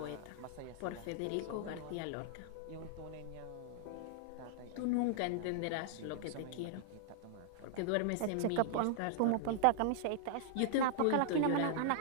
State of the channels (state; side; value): different; both; correlation -0.01